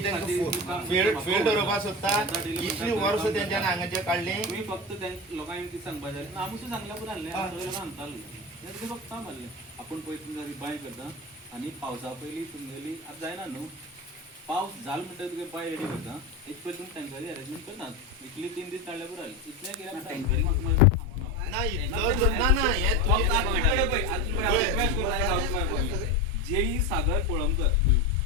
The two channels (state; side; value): normal; both; correlation 0.21